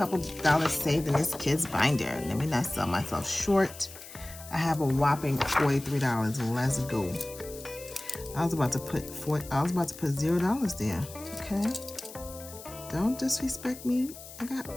dollars saved in this kids binder. Let me not sell myself short. I have a whopping $43. Let's go. I was about to put $0 there. Okay. Don't disrespect me. I got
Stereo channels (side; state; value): left; noise; hiss, 15 dB below the sound